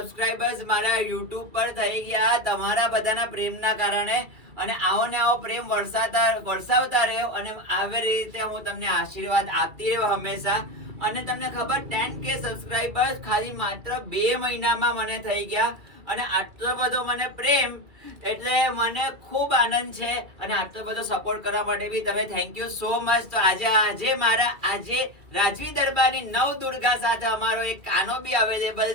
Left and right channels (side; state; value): left; late; 2.3 ms